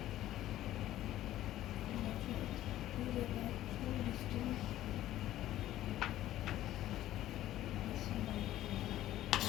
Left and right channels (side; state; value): right; quieter; 13.7 dB